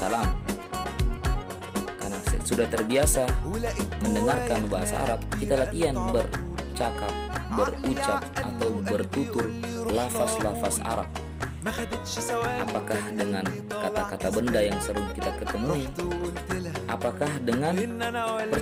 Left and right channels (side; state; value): both; identical; correlation 1.00